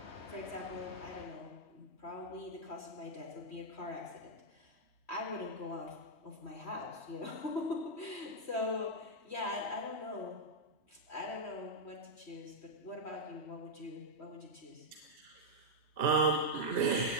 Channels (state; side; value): late; right; 3.1 ms